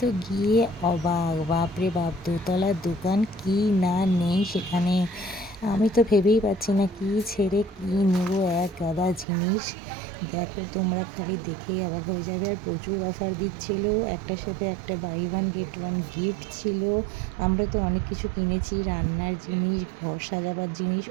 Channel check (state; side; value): drops out; left; at 9.2 s